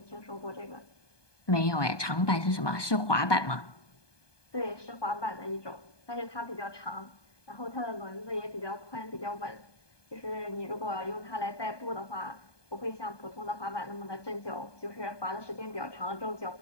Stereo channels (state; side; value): late; right; 1.2 ms